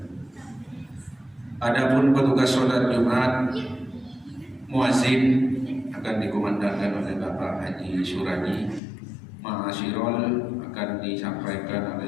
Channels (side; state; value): right; drops out; at 8.8 s